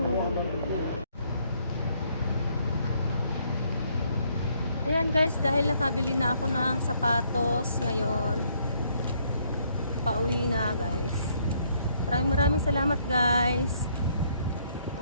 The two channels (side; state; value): both; inverted; correlation -0.69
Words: Ayan guys, dahil nakabili na ako ng sapatos ngayon, pauwi na guys. Maraming salamat guys.